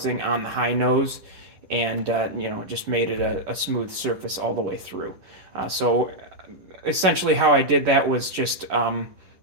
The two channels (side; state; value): left; late; 11 ms